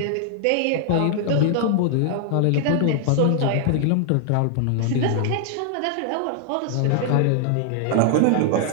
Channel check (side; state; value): both; different; correlation 0.00